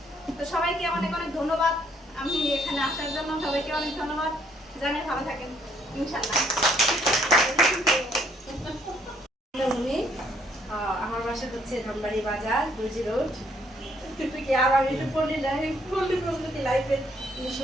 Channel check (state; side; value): normal; both; correlation 0.67